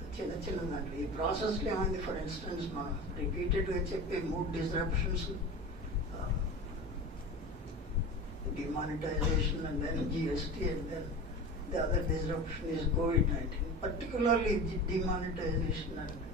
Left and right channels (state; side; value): normal; both; correlation 0.32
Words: చిన్న చిన్న దాంట్లో ఈ ప్రాసెస్లో ఏమైంది, ఫర్ ఇన్స్టెన్స్ మనం రిపీటెడ్గా చెప్పే 3 disruptions, demonetization and then GST, and then the other disruption is COVID-19. Particularly demonetization and